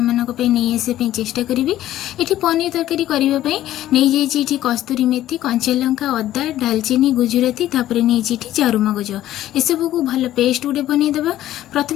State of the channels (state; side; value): quieter; right; 13.5 dB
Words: मानको पे नै आसे पे चेष्टा करिवि। एठी पनीर तरकारी करिबा पई नै जेछि एठी कस्तूरी मेथी कंचा लंका अदा दालचीनी गुजराती तापरे नै जेछि चारू मगज एसबू को भल पेस्ट गुटे बनईदेवा।